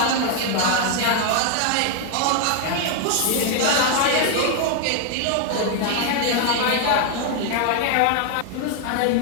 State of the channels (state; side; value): different; both; correlation 0.00